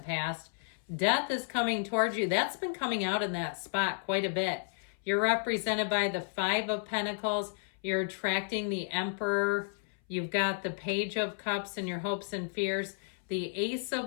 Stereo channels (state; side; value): silent; right; 56 dB below the other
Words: past. Death is coming towards you. That's been coming out in that spot quite a bit. You're represented by the Five of Pentacles. You're attracting the Emperor. You've got the Page of Cups in your hopes and fears. The Ace of